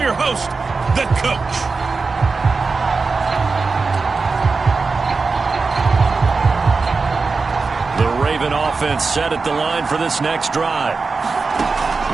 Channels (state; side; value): quieter; left; 4.3 dB